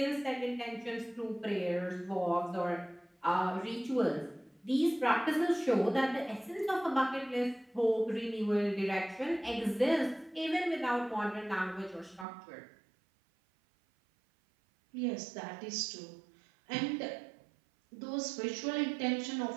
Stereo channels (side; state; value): left; drops out; at 12.2 s